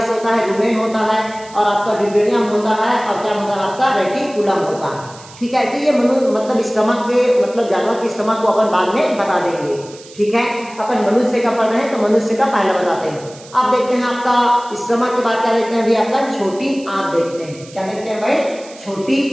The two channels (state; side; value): noise; right; hiss, 20 dB below the sound